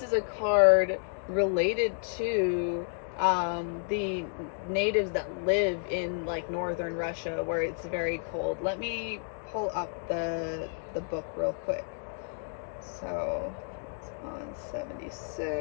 is a card related to the natives that live in like northern Russia where it's very cold. Let me pull up the book real quick. So it's on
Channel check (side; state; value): right; silent; digital silence